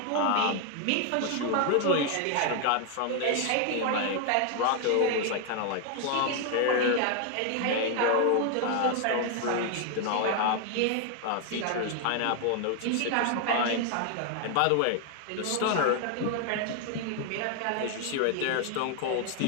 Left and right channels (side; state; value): both; different; correlation 0.00